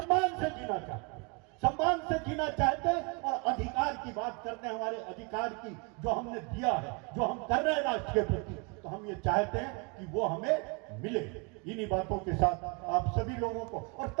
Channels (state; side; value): quieter; left; 32.0 dB